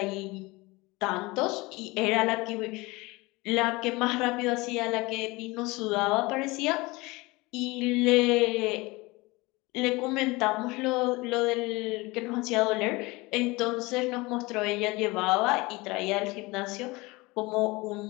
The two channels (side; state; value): right; quieter; 23.1 dB